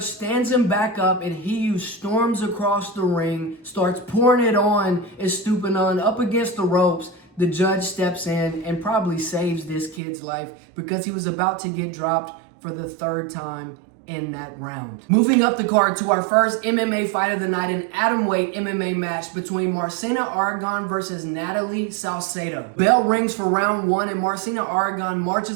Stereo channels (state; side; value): drops out; left; at 10.0 s